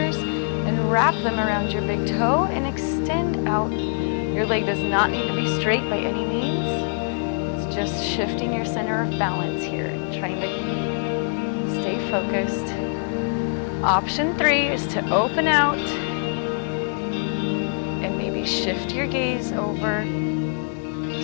and wrap them around your big toe and extend out. Your leg does not need to be straight by any means. Just shifting your center of balance here, trying to stay focused. Option three is to open out and maybe shift your gaze over,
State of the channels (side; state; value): right; silent; 63 dB below the other